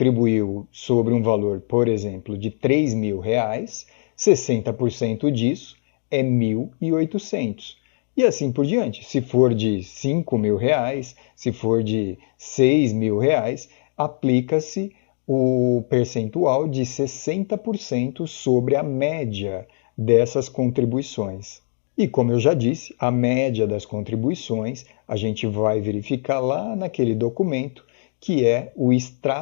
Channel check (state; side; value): silent; right; digital silence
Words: sobre um valor, por exemplo, de R$3.000, 60% disso é 1.800. E assim por diante. Se for de R$5.000, se for de R$6.000, aplica-se o percentual de 60% sobre a média dessas contribuições. E como eu já disse, a média das contribuições a gente vai verificar lá naquele documento que é o